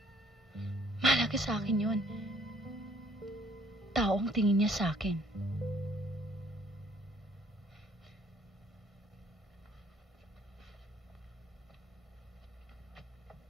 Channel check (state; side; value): normal; both; correlation 0.61